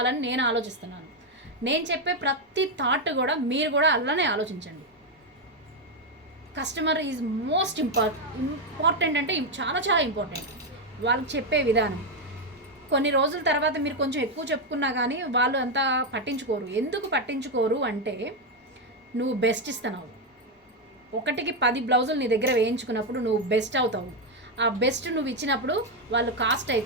నేను ఆలోచిస్తున్నాను. నేను చెప్పే ప్రతి థాట్ కూడా మీరు కూడా అలానే ఆలోచించండి. కస్టమర్ ఈజ్ మోస్ట్ ఇంపార్టెంట్ అంటే చాలా చాలా ఇంపార్టెంట్. వాళ్ళకి చెప్పే విధానం కొన్ని రోజుల తర్వాత మీరు కొంచెం ఎక్కువ చెప్పుకున్నా కానీ వాళ్ళు అంతా పట్టించుకోరు. ఎందుకు పట్టించుకోరు అంటే నువ్వు బెస్ట్ ఇస్తున్నావు. 1కి 10 బ్లౌజులు నీ దగ్గర వేయించుకున్నప్పుడు నువ్వు బెస్ట్ అవుతావు. ఆ బెస్ట్ నువ్వు ఇచ్చినప్పుడు వాళ్ళు కాస్ట్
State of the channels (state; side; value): normal; both; correlation 0.05